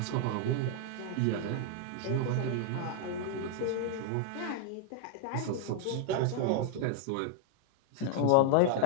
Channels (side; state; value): both; different; correlation 0.00